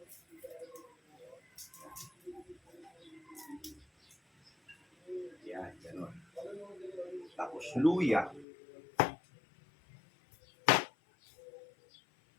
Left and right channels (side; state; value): right; drops out; at 8.5 s